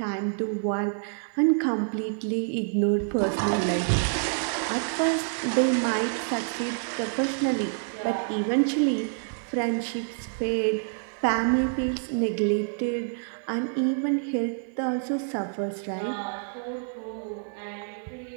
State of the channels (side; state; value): left; silent; digital silence